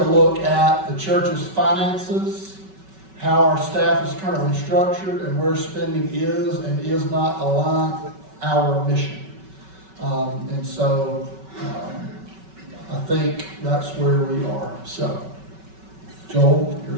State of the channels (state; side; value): late; left; 5.3 ms